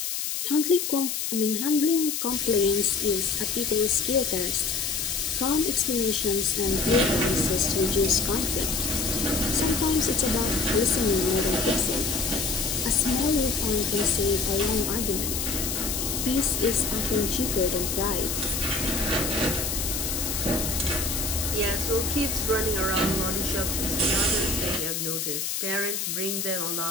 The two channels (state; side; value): noise; left; hiss, 2 dB below the sound